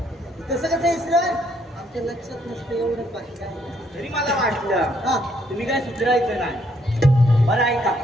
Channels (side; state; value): both; normal; correlation 0.70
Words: तसं कसं इसरण आमच्या लक्षात नसतं एवढं बाकी काय तरी मला वाटलं हा तुम्ही काय सुधारायचं नाही बरं ऐका